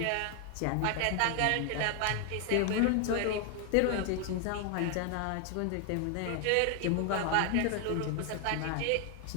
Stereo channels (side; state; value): both; different; correlation 0.00